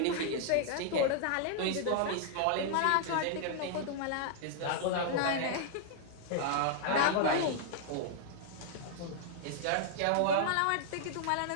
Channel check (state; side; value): different; both; correlation -0.01